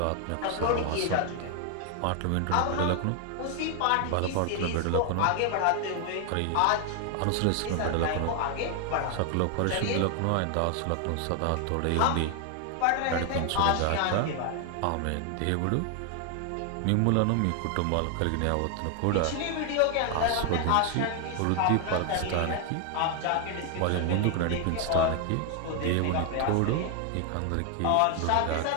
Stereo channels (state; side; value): different; both; correlation 0.00